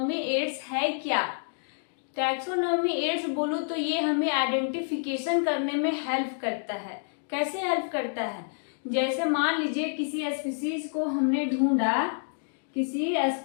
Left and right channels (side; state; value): right; silent; digital silence